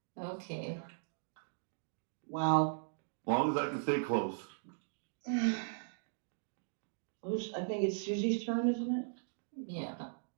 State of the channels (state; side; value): silent; left; digital silence